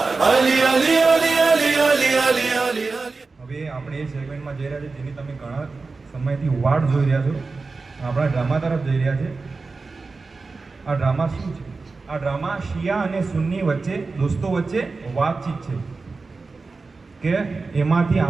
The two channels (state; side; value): quieter; left; 4.0 dB